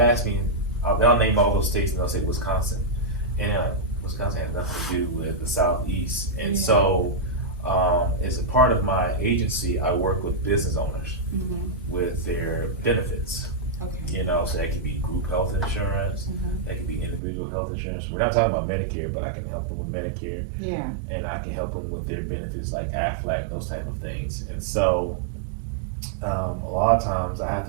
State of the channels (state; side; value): drops out; left; at 17.2 s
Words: me, they'll name all those states and they'll say Wisconsin, and Wisconsin has nothing to do with the Southeast. And so as a part of my agency, I work with business owners with their benefits. You know, so that could be group health insurance, that could be individual health insurance. We're not talking about Medicare, but I can help them with Medicare. Yeah. And I can help them with their benefits like Aflac and those type of things. And so a lot of times I have